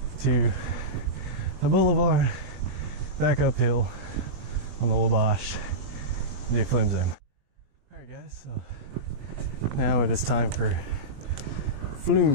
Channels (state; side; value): late; left; 20 ms